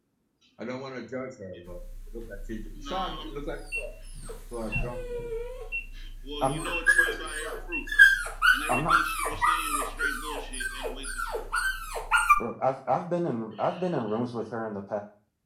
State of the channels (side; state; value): both; identical; correlation 1.00